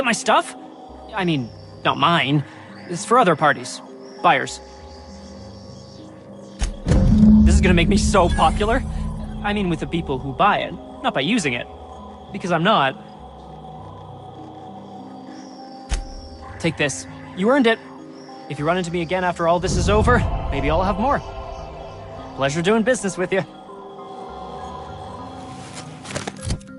my stuff? I mean, not mine. It's for other parties. Buyers. This is gonna make me so popular. I mean, with the people who buy it, not by using it. Because I'm not. Take this. You earned it. If you run into me again after all this is over, maybe I'll have more. Pleasure doing business with you.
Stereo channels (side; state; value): both; identical; correlation 1.00